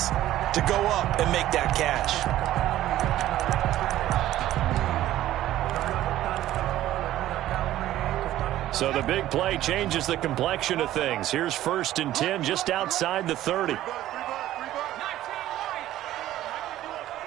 to go up and make that catch. So the big play changes the complexion of things. Here's 1st and 10 just outside the 30.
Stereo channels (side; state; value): left; quieter; 13.9 dB